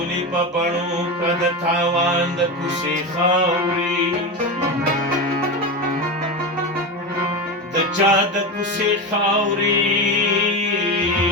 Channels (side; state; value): both; normal; correlation 0.19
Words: په بڼو که د تاوان د کوڅې خاورې د چا د کوڅې خاورې